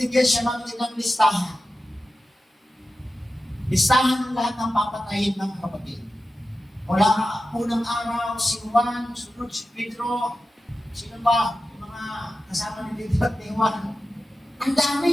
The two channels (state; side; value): normal; both; correlation 0.93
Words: siya ng listahan. Listahan ng lahat ng papatayin ng kapatid. Mula unang araw, si Juan, sunod si Pedro, sino ba? Yung mga kasama ni Pedro at ni Juan. Ang